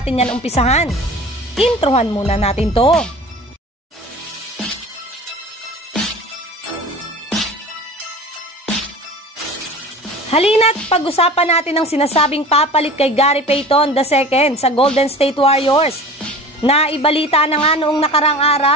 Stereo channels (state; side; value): normal; both; correlation 0.39